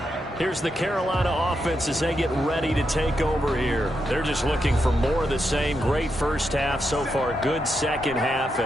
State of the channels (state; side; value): normal; both; correlation 0.84